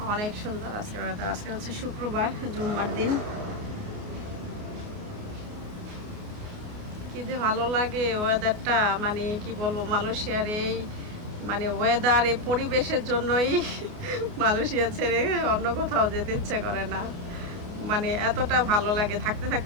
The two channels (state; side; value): late; left; 29 ms